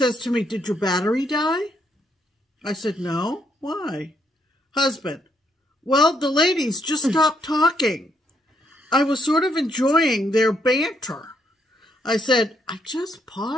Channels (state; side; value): normal; both; correlation 0.74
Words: to me, did your battery die? I said, no. Why? Husband. Well, the ladies just stopped talking. I was sort of enjoying their banter. I said, I just